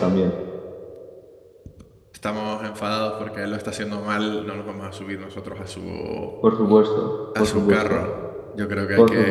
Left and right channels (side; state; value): both; identical; correlation 1.00